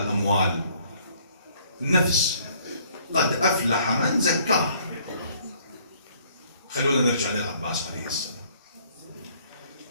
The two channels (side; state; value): both; inverted; correlation -0.61